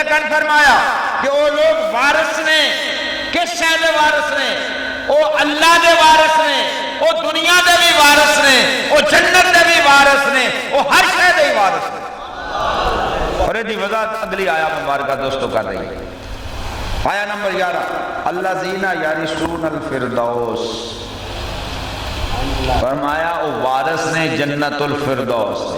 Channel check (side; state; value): both; identical; correlation 1.00